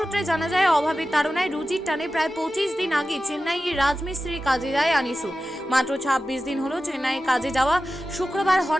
জানা যায়, অভাবের তাড়নায় রুজির টানে প্রায় 25 দিন আগে চেন্নাইয়ে রাজমিস্ত্রির কাজে যায় আনিসুর। মাত্র 26 দিন হলো চেন্নাইয়ে কাজে যাওয়া। শুক্রবার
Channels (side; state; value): both; normal; correlation 0.94